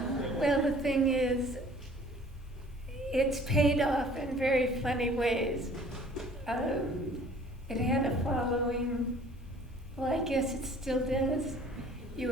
Well, the thing is, it's paid off in very funny ways. It had a following. Well, I guess it still does.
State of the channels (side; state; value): both; normal; correlation 0.52